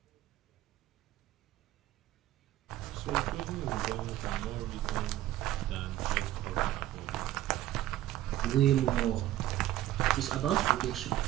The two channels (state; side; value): quieter; left; 14.0 dB